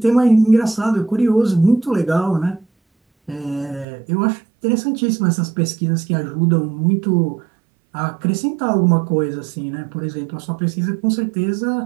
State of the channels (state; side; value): drops out; left; at 3.9 s